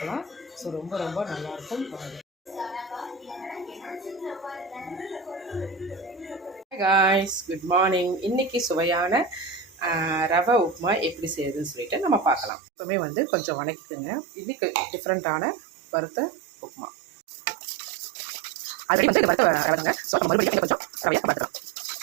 ஸோ ரொம்ப ரொம்ப நல்லாயிருக்கும். Hi guys, good morning. இன்றைக்கி சுவையான ரவை உப்புமா எப்படி செய்யுதுன்னு சொல்லிட்டு நம்ம பார்க்கலாம். எப்பவுமே கொஞ்சம் வணக்கிக்குங்க. இன்றைக்கி டிஃப்ரெண்ட்டான வறுத்த உப்புமா. அது வறுத்த ரவைங்க. ஸோ நம்ம மறுபடியும் கொஞ்சம் ரவையாக பார்த்துக்கலாம்.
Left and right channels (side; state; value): left; drops out; at 12.5 s